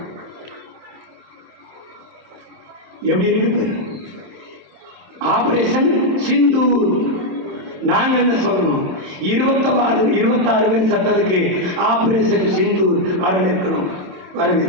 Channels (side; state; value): left; late; 27 ms